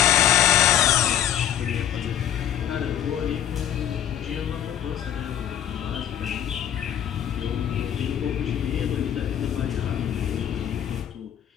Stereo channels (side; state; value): right; quieter; 10.4 dB